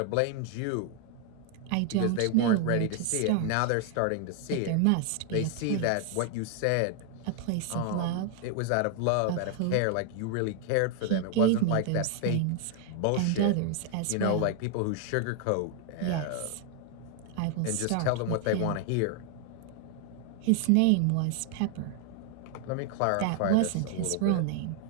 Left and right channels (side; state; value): both; different; correlation 0.00